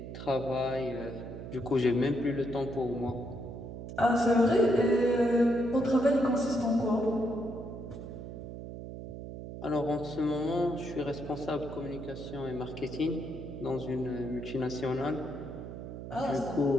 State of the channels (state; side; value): noise; right; hum, 9 dB below the sound